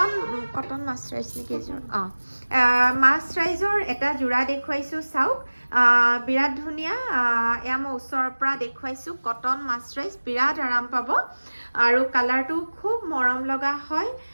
কটন মাছৰাইজ নেকি এযোৰ মাছৰাইজৰ এটা যোৰা দেখুৱাইছোঁ চাওক বিৰাট ধুনীয়া এয়া মই ওচৰৰ পৰা দেখুৱাইছোঁ কটন মাছৰাইজ বিৰাট আৰাম পাব আৰু কালাৰটো খুব মৰম লগা হয়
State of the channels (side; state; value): both; inverted; correlation -1.00